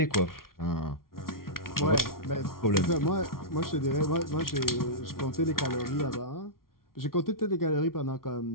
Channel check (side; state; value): right; late; 0.93 ms